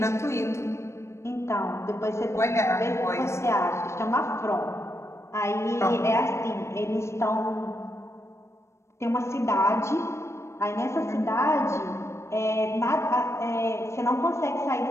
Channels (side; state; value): right; late; 0.13 ms